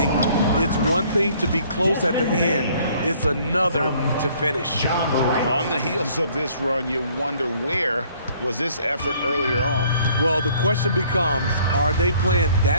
It's one thing to be close at the end. It's another to finish. On the heels of this run, you wonder where was this effort earlier on? Well, the question becomes, are they playing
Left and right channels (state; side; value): inverted; both; correlation -0.59